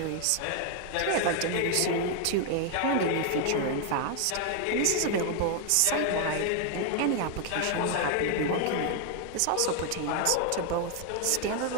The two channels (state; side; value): different; both; correlation 0.00